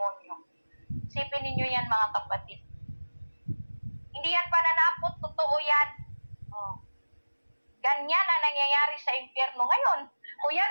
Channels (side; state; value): both; inverted; correlation -1.00